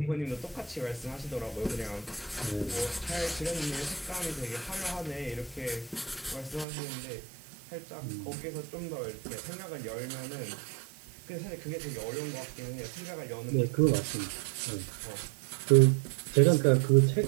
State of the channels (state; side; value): drops out; left; at 6.7 s